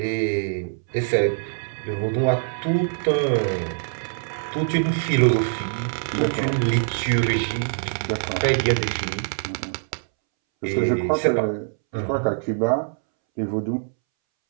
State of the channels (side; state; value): left; silent; 63 dB below the other